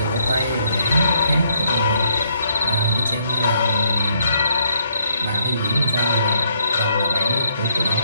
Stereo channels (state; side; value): inverted; both; correlation -0.72